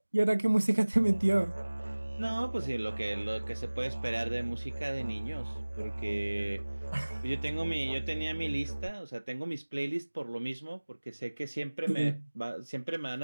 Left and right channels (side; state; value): both; inverted; correlation -1.00